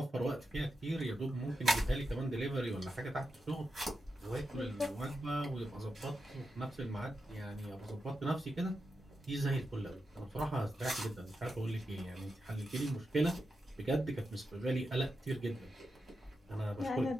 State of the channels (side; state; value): both; normal; correlation 0.88